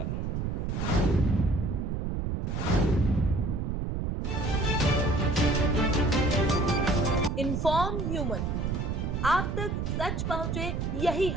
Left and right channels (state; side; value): noise; right; rumble, 1 dB below the sound